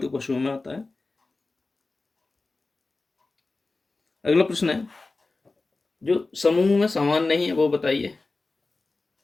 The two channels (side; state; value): right; quieter; 3.5 dB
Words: पशुओं में आता है। अगला प्रश्न है, जो समूह में समान नहीं है वो बताइए।